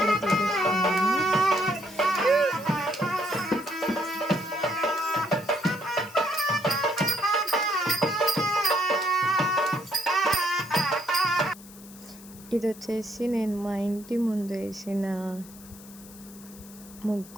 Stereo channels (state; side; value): noise; left; hiss, 20 dB below the sound